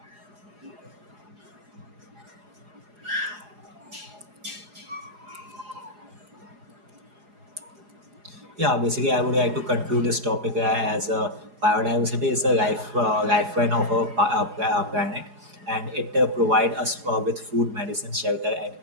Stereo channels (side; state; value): left; late; 4.8 ms